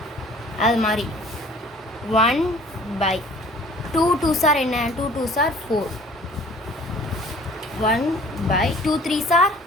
அது மாதிரி 1/2 2s are என்ன, 2 2s are 4. 1/2 3s are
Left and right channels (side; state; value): both; normal; correlation 0.50